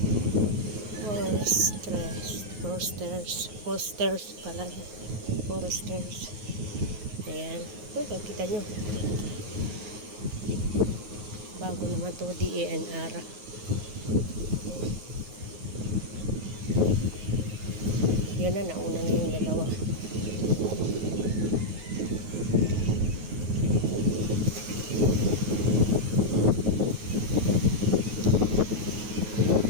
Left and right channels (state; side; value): late; left; 9.4 ms